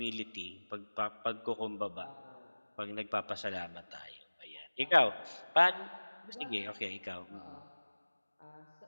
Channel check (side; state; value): both; inverted; correlation -1.00